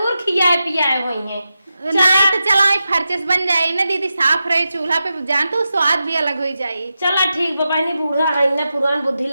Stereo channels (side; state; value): both; inverted; correlation -0.90